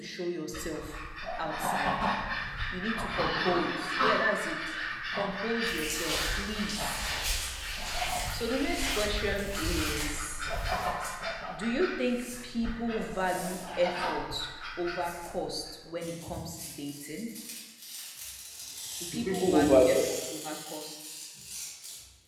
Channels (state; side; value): identical; both; correlation 1.00